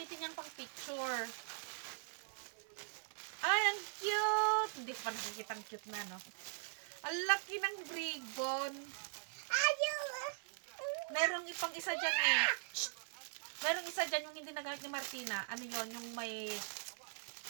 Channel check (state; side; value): silent; left; 50 dB below the other